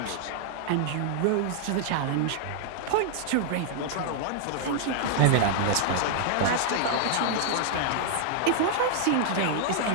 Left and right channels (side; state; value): both; different; correlation -0.01